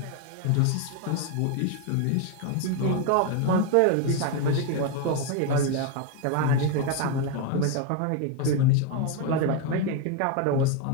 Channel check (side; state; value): both; different; correlation 0.02